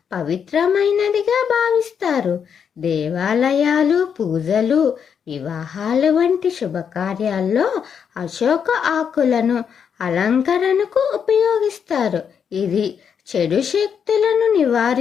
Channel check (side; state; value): right; quieter; 7.3 dB